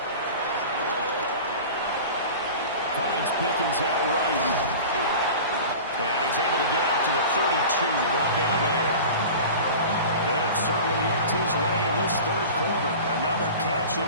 Finds Pickens out right. And he's able to get out to the 32, brought down there. They have certainly looked his way in this third quarter. Another catch, and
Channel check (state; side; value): inverted; both; correlation -0.36